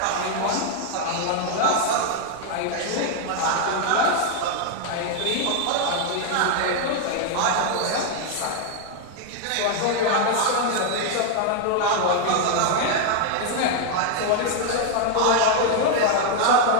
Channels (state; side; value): different; both; correlation 0.00